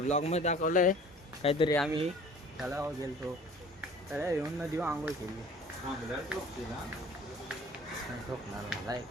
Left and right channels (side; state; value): both; normal; correlation 0.47